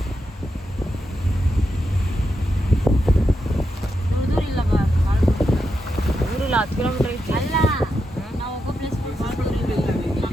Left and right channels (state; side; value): normal; both; correlation 0.85